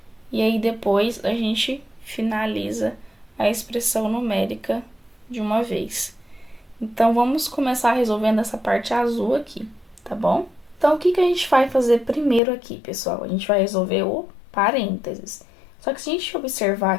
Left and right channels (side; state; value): right; drops out; at 12.4 s